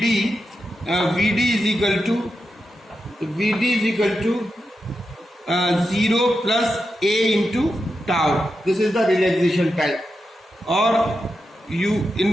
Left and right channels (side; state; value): both; normal; correlation 0.88